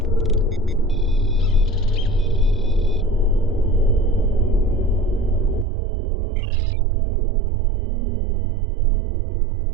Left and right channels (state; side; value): drops out; left; at 5.7 s